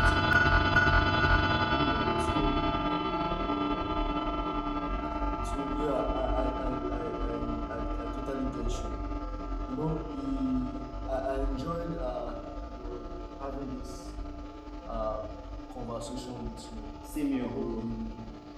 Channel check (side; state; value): both; identical; correlation 1.00